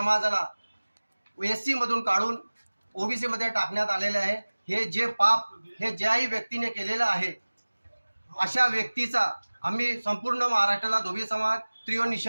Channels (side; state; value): both; inverted; correlation -1.00